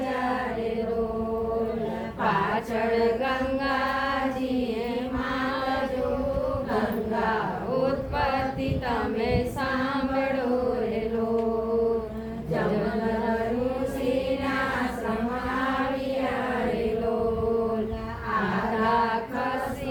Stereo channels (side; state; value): both; identical; correlation 1.00